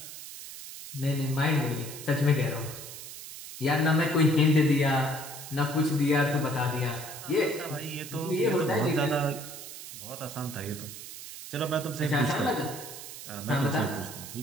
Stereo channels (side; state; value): right; noise; hiss, 12 dB below the sound